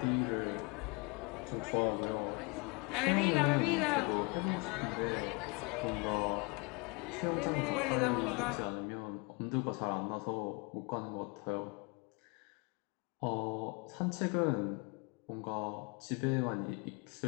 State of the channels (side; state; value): right; quieter; 30.2 dB